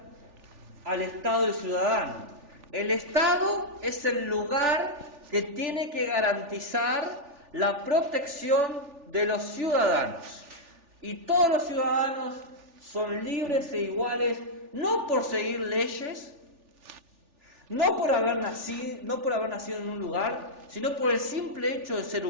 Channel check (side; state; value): left; late; 3.4 ms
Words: al Estado del ciudadano. El Estado es el lugar que tiene que garantizar la protección de los ciudadanos. Y todos los ciudadanos son libres e iguales, no por seguir leyes, no por haber nacido en un lugar, sino por el simple hecho de ser